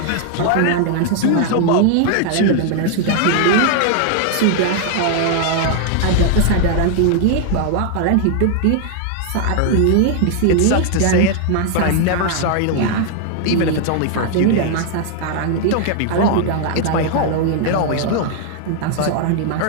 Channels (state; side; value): different; both; correlation 0.00